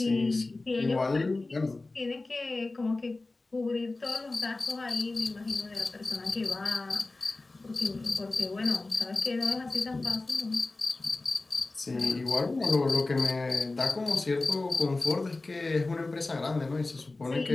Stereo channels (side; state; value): right; quieter; 3.3 dB